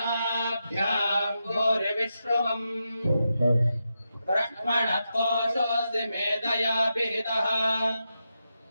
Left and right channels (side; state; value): both; inverted; correlation -0.87